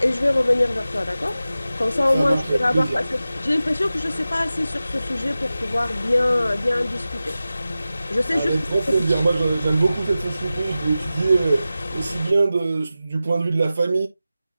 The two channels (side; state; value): both; inverted; correlation -0.94